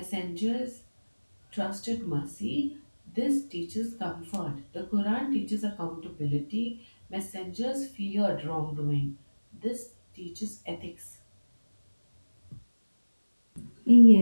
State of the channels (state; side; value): inverted; both; correlation -1.00